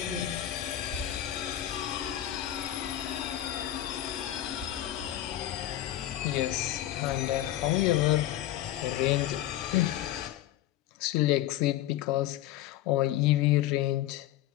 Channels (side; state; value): right; quieter; 13.5 dB